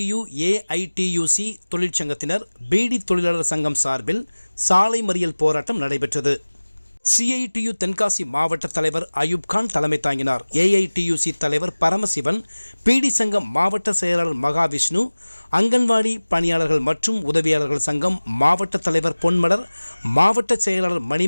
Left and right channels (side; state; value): both; inverted; correlation -1.00